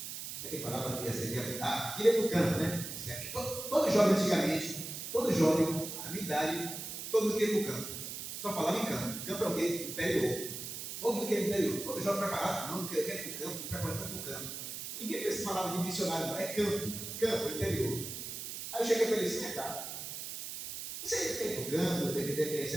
Como é que falava que ia ser? Queria ir para o campo, né? Todo jovem antigamente, todo jovem, na minha idade, todo mundo queria ir para o campo. Só falava em campo. Campo é o quê? Interior. Todo mundo quer ir para o interior. Todo jovem preparado. Não, eu quero ir para o campo, preparado para o campo. Ninguém pensa que falava de missionário, não. É campo, interior. Aí eu cheguei para ele assim, cara, você quer ir para o campo, tem que ter ser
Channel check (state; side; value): noise; right; hiss, 7 dB below the sound